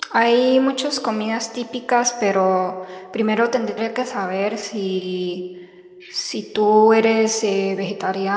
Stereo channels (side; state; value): both; identical; correlation 1.00